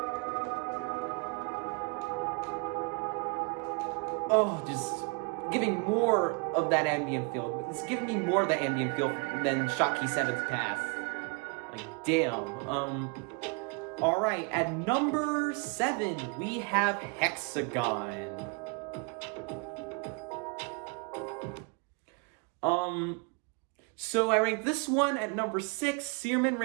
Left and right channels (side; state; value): left; quieter; 31.8 dB